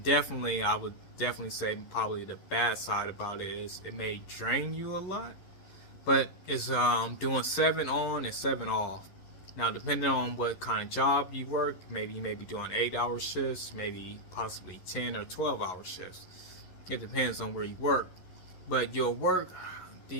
definitely, I would definitely say probably the bad side about it is it may drain you a lot, but it's doing 7 on and 7 off. Now, depending on what kind of job you work, maybe you may be doing 8-hour shifts, maybe possibly 10 or 12-hour shifts. It depends on where you work. But you'll work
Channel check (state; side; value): late; right; 11 ms